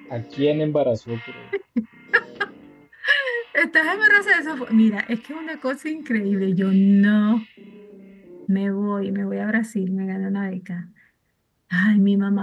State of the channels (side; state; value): both; identical; correlation 1.00